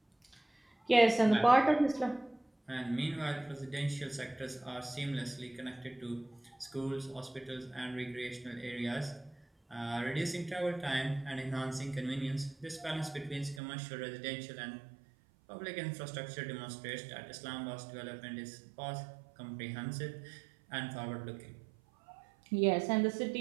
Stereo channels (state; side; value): drops out; left; at 13.6 s